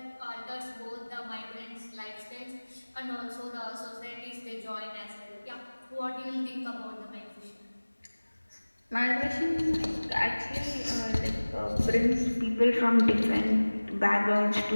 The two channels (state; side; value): inverted; both; correlation -1.00